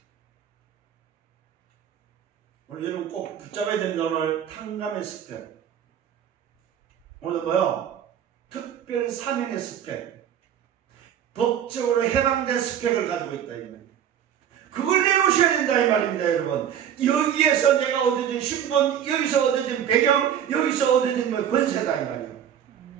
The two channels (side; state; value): left; quieter; 9.5 dB